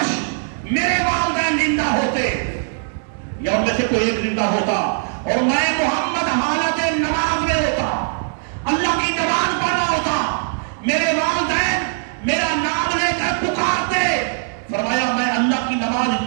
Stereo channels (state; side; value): silent; left; digital silence